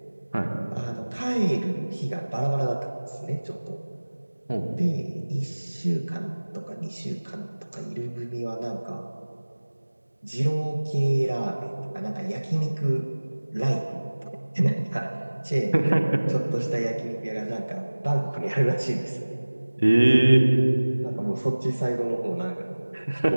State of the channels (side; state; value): both; inverted; correlation -1.00